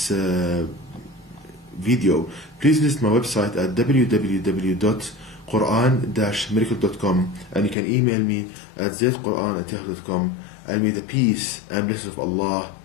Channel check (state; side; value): drops out; right; at 7.8 s